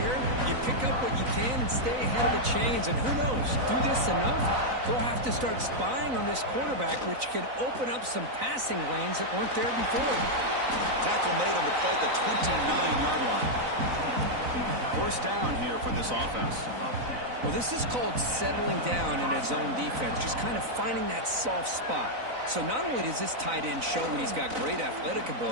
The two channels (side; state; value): left; late; 4.0 ms